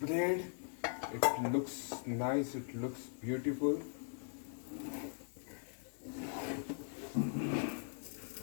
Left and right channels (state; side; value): silent; right; digital silence